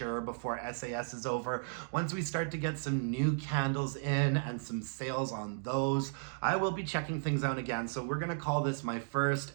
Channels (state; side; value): silent; left; digital silence